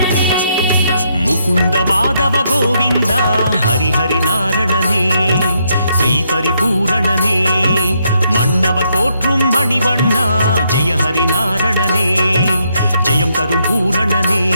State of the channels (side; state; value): both; inverted; correlation -0.76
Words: முகுந்த மாதவ கோவிந்தா ஹரிஹரி நாரணனே ஸ்ரீ பரிபூரணனே மன்னவர் போற்றும் மணிவண்ணா ஜெய ஹரி நாரணனே ஜெயம் தரும் பூரணனே